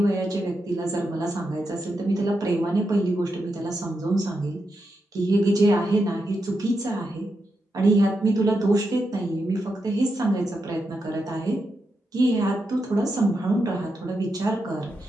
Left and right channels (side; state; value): both; normal; correlation 0.85